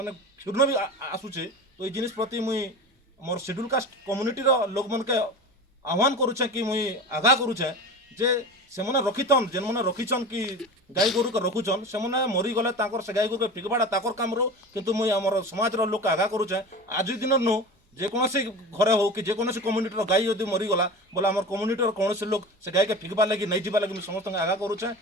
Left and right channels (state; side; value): normal; both; correlation 0.32